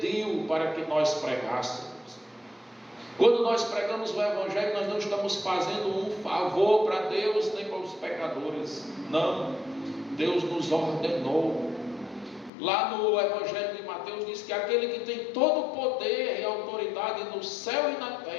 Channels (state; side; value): drops out; right; at 12.5 s